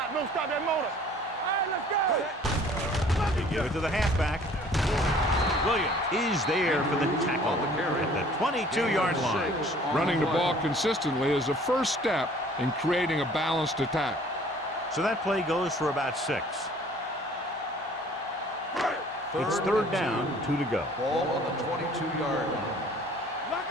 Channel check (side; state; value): both; normal; correlation 0.53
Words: Don't stop that motor. All right, let's go. They give it to the halfback. Williams is there for the tackle at the 22-yard line. Running the ball consistently is the first step in creating a balanced attack. So that play goes for about 6. It's 3rd down, 2 to go. Ball on the 22-yard line. Lock